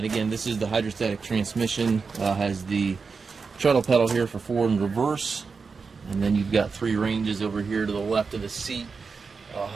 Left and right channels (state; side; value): quieter; left; 5.0 dB